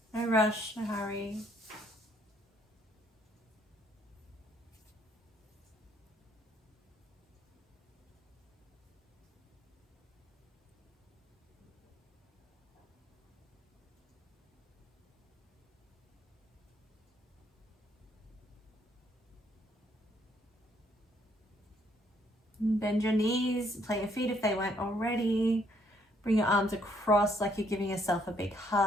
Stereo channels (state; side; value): normal; both; correlation 0.69